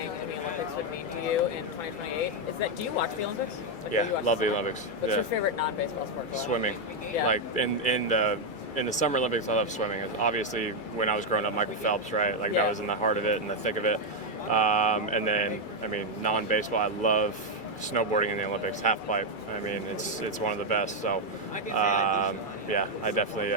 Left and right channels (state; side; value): late; right; 2.3 ms